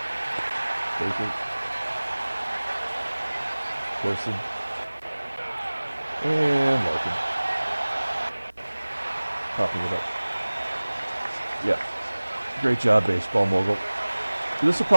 Baker. Corson. And Larkin. Popping it up. Yeah. Great job, baseball mogul. This will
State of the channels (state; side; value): inverted; both; correlation -1.00